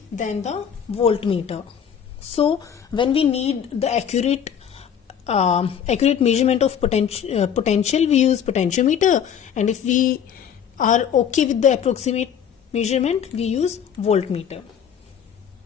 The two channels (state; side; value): quieter; right; 8.4 dB